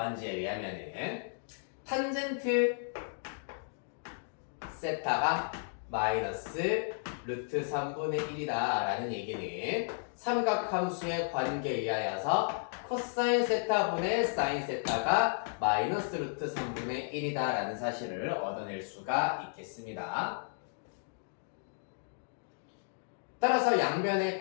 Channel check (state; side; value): silent; right; digital silence